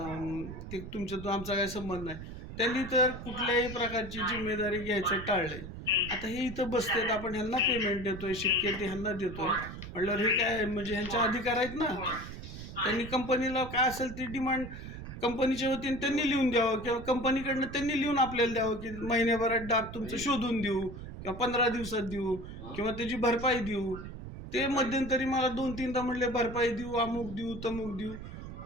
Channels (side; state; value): right; noise; rumble, 10 dB below the sound